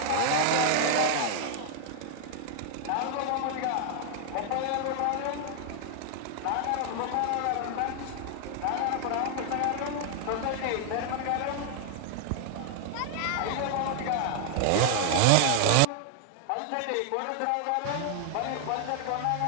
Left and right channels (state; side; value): different; both; correlation 0.00